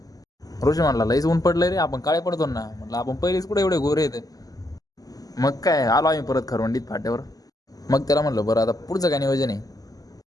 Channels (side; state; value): right; late; 0.17 ms